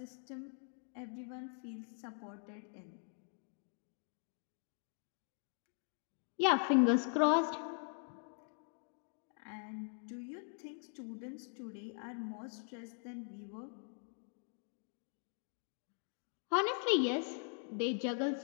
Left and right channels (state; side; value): silent; right; 50 dB below the other